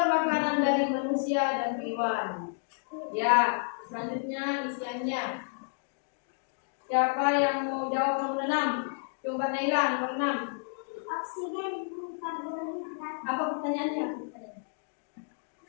makanan dari manusia. manusia dan hewan. Ya, selanjutnya isiannya. Siapa yang mau jawab nomor 6? Coba Naila nomor 6. Oksigen, karbon hidrat. Apa pertanyaannya?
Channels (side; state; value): right; silent; digital silence